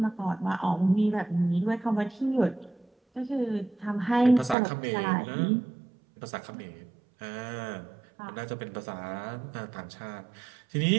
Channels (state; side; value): drops out; left; at 4.5 s